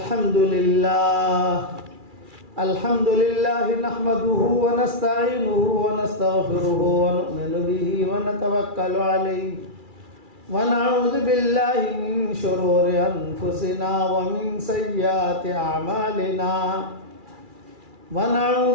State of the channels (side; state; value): left; late; 2.4 ms